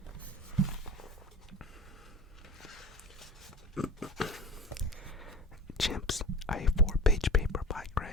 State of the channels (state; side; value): normal; both; correlation 0.33